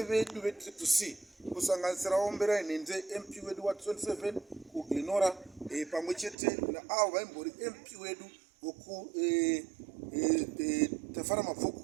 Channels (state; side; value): drops out; left; at 6.4 s